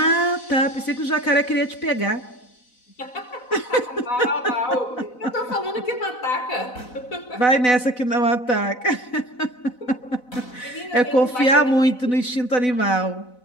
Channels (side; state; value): right; late; 4.0 ms